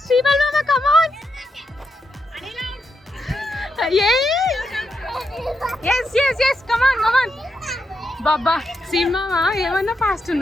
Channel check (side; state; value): both; normal; correlation 0.83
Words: బాబా సినిమా ఏమన్నా ఫాస్ట్